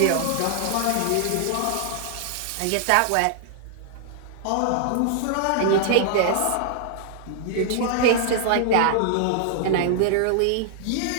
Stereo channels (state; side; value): different; both; correlation -0.01